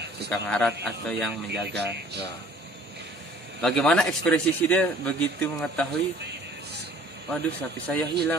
arat atau yang menjaga. Ya. Bagaimana ekspresi dia begitu mengetahui, waduh sapi saya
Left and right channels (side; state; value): both; normal; correlation 0.53